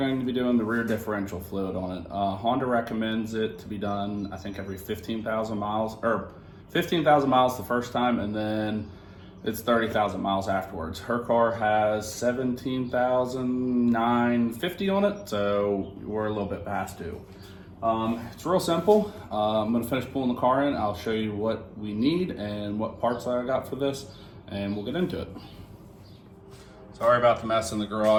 to be doing the rear differential fluid on it. Honda recommends it to be done, I think, every 15,000 miles, or 15,000 miles the first time, and then it's 30,000 miles afterwards. Her car has 17,950 on it, so we're a little bit past due. It's real simple. I'm gonna finish pulling the car in. I'll show you what we need and what parts I got for this, and we'll get into it. Sorry about the mess in the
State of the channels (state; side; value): identical; both; correlation 1.00